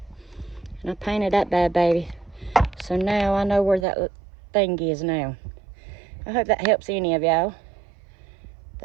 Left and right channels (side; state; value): left; drops out; at 3.9 s